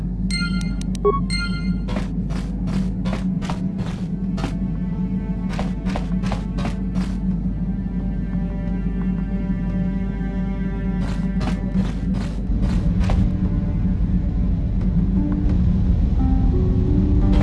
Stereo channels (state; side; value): identical; both; correlation 1.00